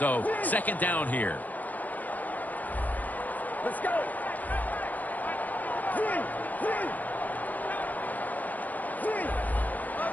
second down here. Let's go.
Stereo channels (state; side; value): late; right; 0.081 ms